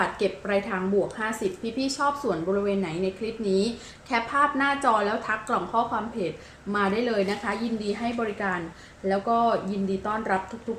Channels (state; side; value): identical; both; correlation 1.00